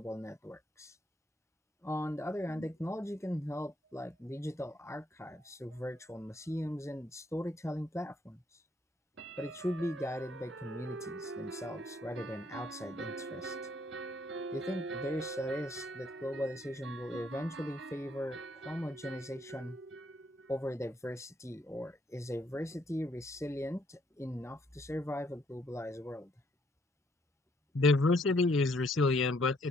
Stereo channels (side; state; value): both; normal; correlation 0.69